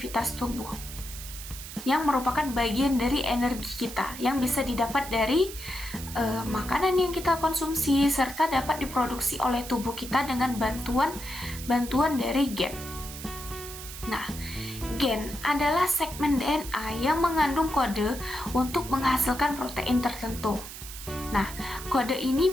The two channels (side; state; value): right; noise; hiss, 11 dB below the sound